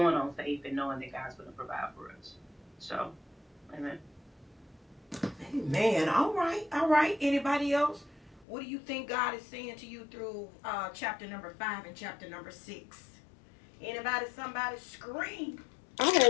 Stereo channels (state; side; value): drops out; right; at 8.5 s